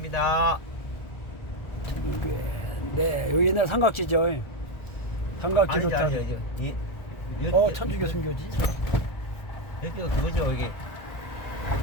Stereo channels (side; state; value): right; late; 1.4 ms